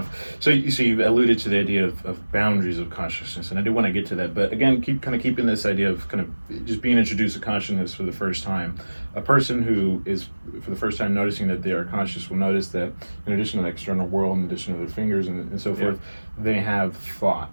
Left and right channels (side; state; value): both; inverted; correlation -1.00